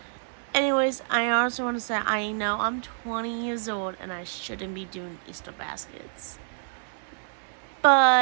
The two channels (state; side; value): silent; left; digital silence